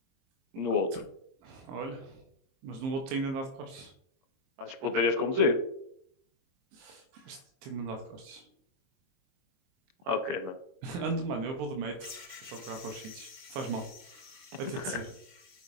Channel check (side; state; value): left; late; 23 ms